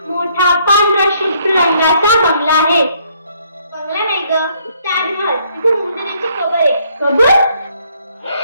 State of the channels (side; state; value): both; inverted; correlation -0.67